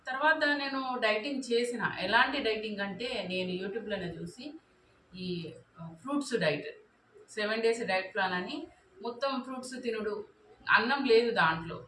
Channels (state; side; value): identical; both; correlation 1.00